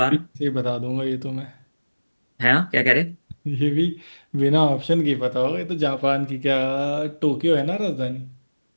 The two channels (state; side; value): inverted; both; correlation -1.00